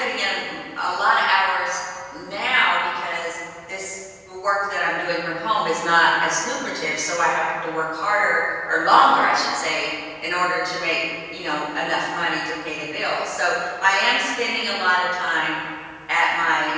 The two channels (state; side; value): identical; both; correlation 1.00